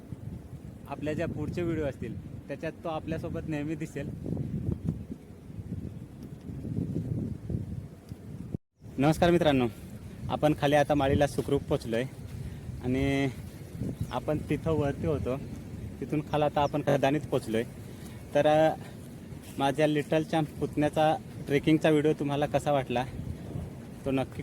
आपल्या ज्या पुढचे व्हिडिओ असतील त्याच्यात तो आपल्यासोबत नेहमी दिसेल. नमस्कार मित्रांनो, आपण खाली आता माळीला सुखरूप पोचलो आहे आणि आपण तिथं वरती होतो, तिथून खाली आता आपण खदानीत पोचलो आहे. तर माझ्या लिटल चॅम्प पुतण्याचा ट्रेकिंगचा व्हिडिओ तुम्हाला कसा वाटला तो नक्की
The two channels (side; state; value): both; identical; correlation 1.00